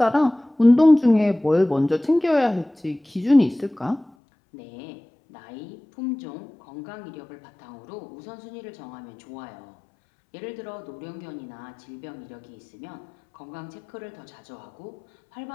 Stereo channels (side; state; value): right; drops out; at 4.1 s